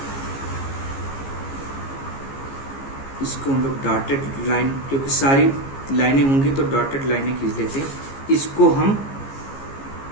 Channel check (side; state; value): right; late; 15 ms